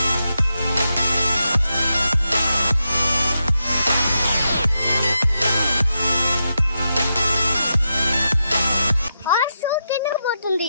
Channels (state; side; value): inverted; both; correlation -0.86